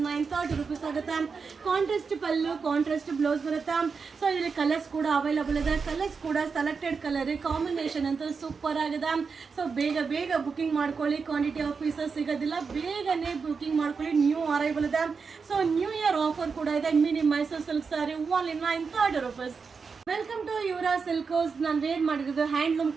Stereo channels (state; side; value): quieter; left; 5.2 dB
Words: 930 rupees ಆಗುತ್ತೆ. ಕಾಂಟ್ರಾಸ್ಟ್ ಪಲ್ಲು, ಕಾಂಟ್ರಾಸ್ಟ್ ಬ್ಲೌಸ್ ಬರುತ್ತೆ. ಸೊ ಇದರಲ್ಲಿ ಕಲರ್ಸ್ ಕೂಡ ಅವೈಲಬಲ್ ಇದೆ. ಕಲರ್ಸ್ ಕೂಡ ಸೆಲೆಕ್ಟೆಡ್ ಕಲರ್, ಕಾಂಬಿನೇಷನ್ ಅಂತ ಸೂಪರ್ ಆಗಿದೆ. ಸೊ ಬೇಗ ಬುಕಿಂಗ್ ಮಾಡ್ಕೊಳ್ಳಿ, ಕ್ವಾಂಟಿಟಿ ಆಫ್ ಪೀಸಸ್ ಸಿಗೋದಿಲ್ಲ. ಬೇಗನೆ ಬುಕಿಂಗ್ ಮಾಡ್ಕೊಳ್ಳಿ, ನ್ಯೂ ಅರೈವಲ್ ಇದೆ. ಸೊ ನ್ಯೂ ಇಯರ್ ಆಫರ್ ಕೂಡ ಇದೆ. Medium Mysuru silk sari only 930 rupees. Welcome to Yuvara Silkers. ನಾನು ವೇರ್ ಮಾಡಿರೋದು ಹ್ಯಾಂಡ್ಲೂಮ್